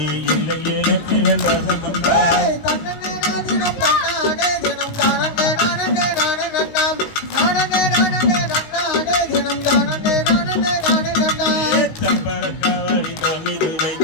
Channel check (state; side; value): late; right; 19 ms